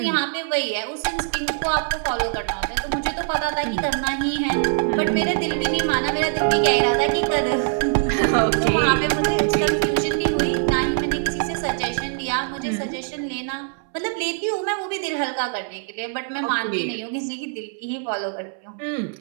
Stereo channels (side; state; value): left; silent; 63 dB below the other